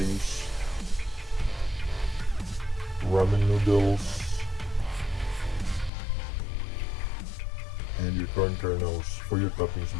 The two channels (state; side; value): drops out; right; at 5.9 s